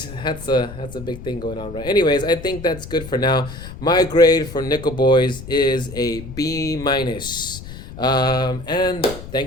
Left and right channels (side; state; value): left; noise; rumble, 13 dB below the sound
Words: that's a big thing going on, right? Anyways, I think that's good for now. My grade for Nickel Boys is a B minus. And